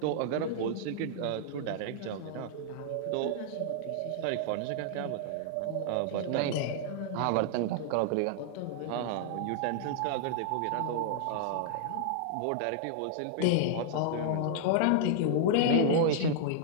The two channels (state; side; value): different; both; correlation -0.01